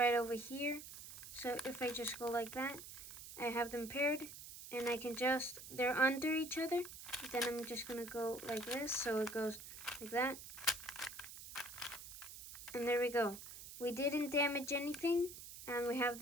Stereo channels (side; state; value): right; noise; hiss, 12 dB below the sound